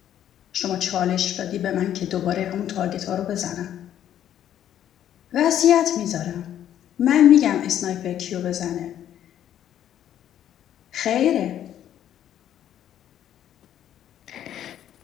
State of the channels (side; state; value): right; quieter; 10.8 dB